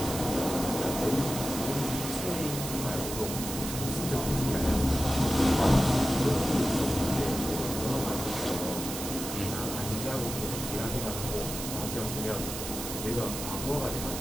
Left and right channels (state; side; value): noise; right; hiss, 6 dB below the sound